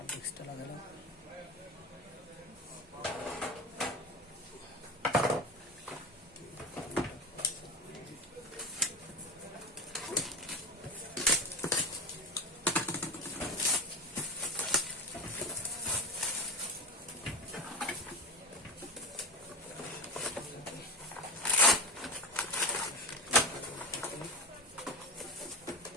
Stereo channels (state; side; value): normal; both; correlation 0.23